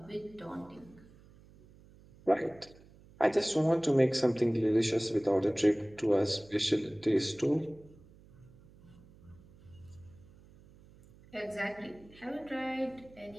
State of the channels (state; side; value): noise; right; hum, 24 dB below the sound